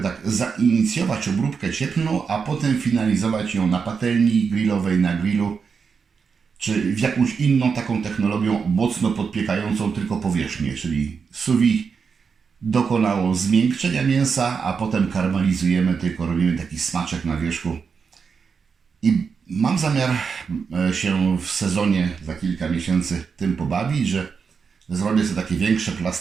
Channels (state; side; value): quieter; left; 5.7 dB